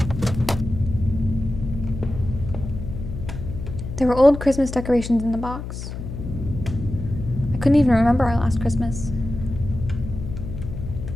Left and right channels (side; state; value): left; noise; hum, 8 dB below the sound